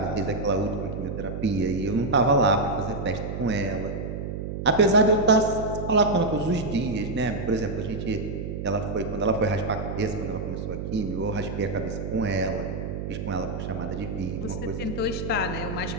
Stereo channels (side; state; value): right; noise; hum, 5 dB below the sound